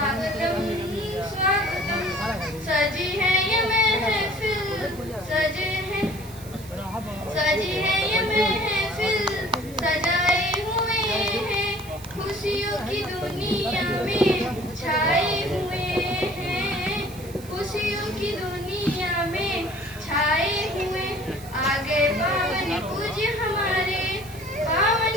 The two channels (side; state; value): right; noise; hiss, 19 dB below the sound